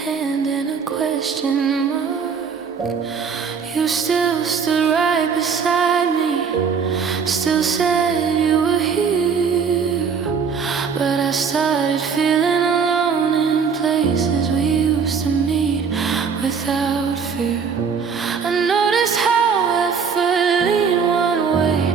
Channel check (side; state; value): left; quieter; 6.1 dB